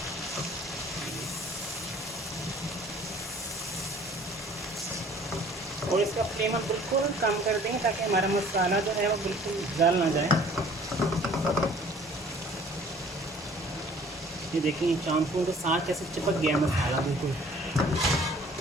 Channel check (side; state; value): both; normal; correlation 0.52